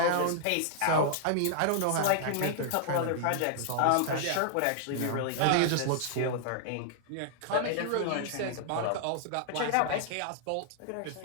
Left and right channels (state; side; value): different; both; correlation -0.01